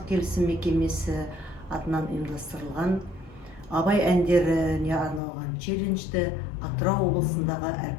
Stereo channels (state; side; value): drops out; right; at 5.2 s